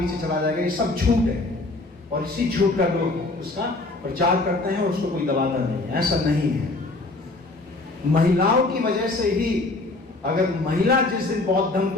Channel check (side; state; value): right; quieter; 3.1 dB